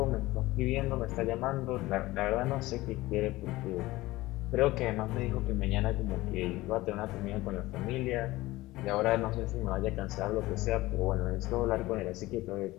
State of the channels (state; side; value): quieter; right; 18.7 dB